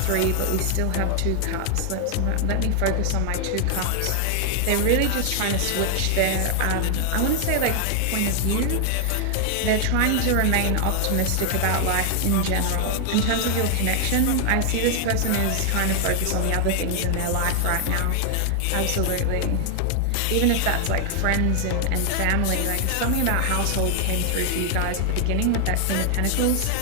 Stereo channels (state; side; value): different; both; correlation 0.00